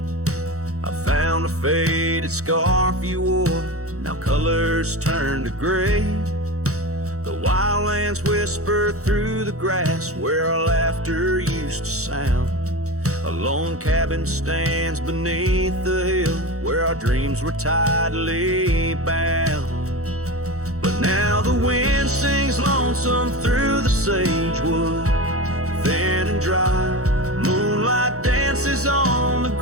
I found a faded scarf you wore, now colors turned to gray. The wildlands whisper through the grass where our laughter used to sound. A lone cabin stands beneath the hill where our dreams were tightly bound. But now the wind sings lonesome through the sagewood, thin and dry. Moonlight dances on the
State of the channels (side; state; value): left; late; 0.65 ms